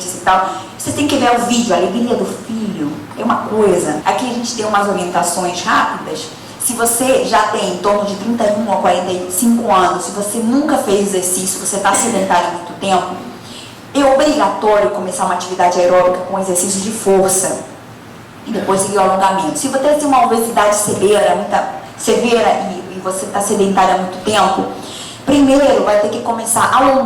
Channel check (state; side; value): identical; both; correlation 1.00